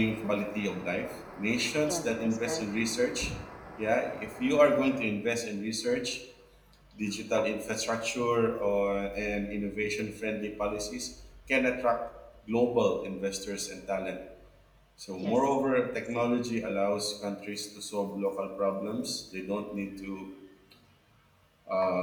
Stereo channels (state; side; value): identical; both; correlation 1.00